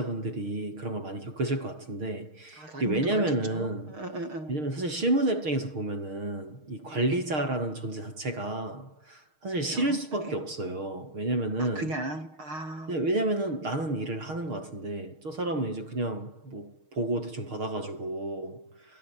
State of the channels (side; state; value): left; late; 6.5 ms